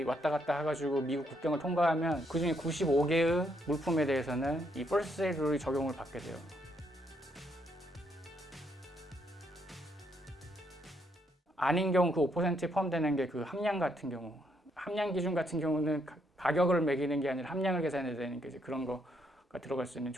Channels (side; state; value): both; normal; correlation 0.74